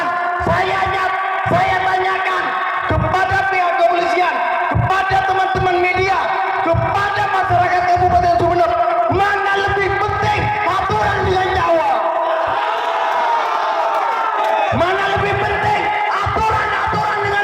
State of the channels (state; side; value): identical; both; correlation 1.00